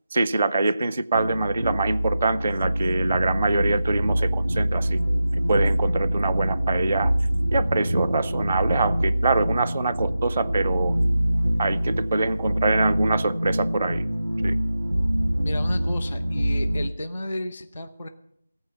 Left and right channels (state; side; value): inverted; both; correlation -0.90